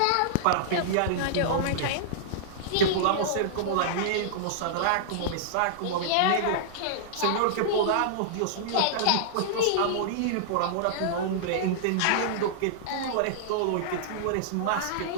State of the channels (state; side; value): different; both; correlation -0.02